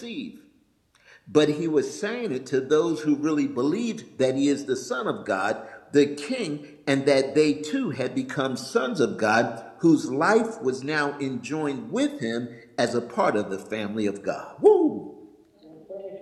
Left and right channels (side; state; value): both; identical; correlation 1.00